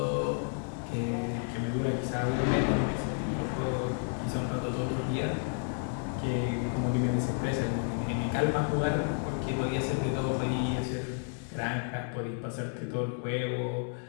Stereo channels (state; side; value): silent; right; 57 dB below the other